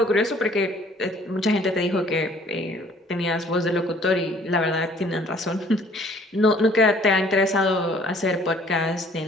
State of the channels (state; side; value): normal; both; correlation 0.56